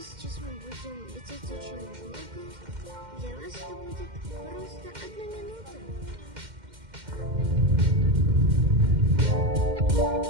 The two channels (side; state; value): left; late; 2.1 ms